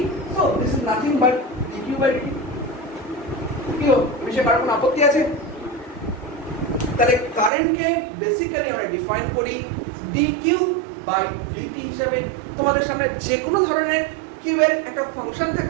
so this is nothing but d q by d. কি এই বিষয়ে কারো কোনো আপত্তি আছে? তাহলে কারেন্টকে বেসিক্যালি আমরা ডিফাইন করি dq বাই dt হিসাবে। তোমাদের সামনে যে কোনো ধরনের কিউ এর একটা ফাংশন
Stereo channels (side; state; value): left; drops out; at 7.5 s